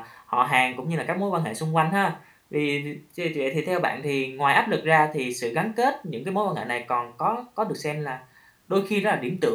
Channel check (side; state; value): both; identical; correlation 1.00